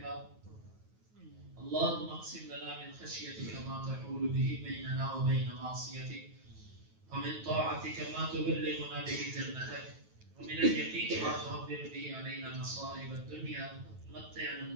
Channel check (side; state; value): left; late; 9.3 ms